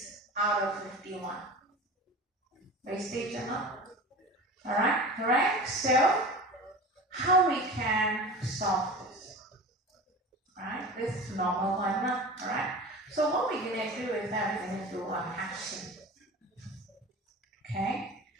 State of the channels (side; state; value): both; normal; correlation 0.34